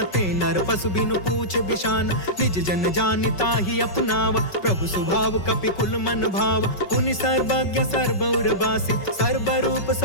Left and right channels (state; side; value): late; right; 5.3 ms